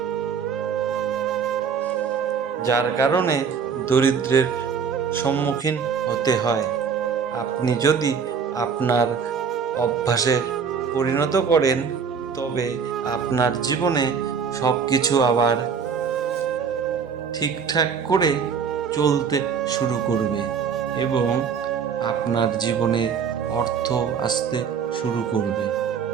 যার কারণে দরিদ্রের সম্মুখীন হতে হয়। আপনি যদি আপনার অভ্যাসে পরিণত করেন, তবে আপনার জীবনে সব কিছু আবার ঠিকঠাক করে চলতে শুরু করবে এবং আপনার জীবনে অর্থ আসতে শুরু করবে।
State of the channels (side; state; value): left; quieter; 6.4 dB